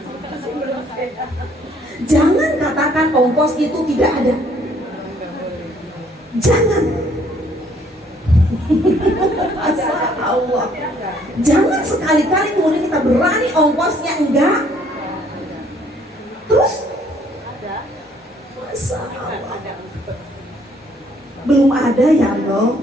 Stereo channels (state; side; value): normal; both; correlation 0.63